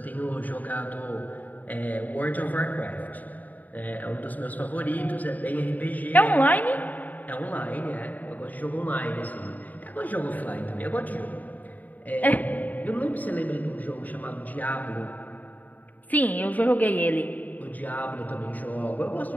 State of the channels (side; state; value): right; late; 0.079 ms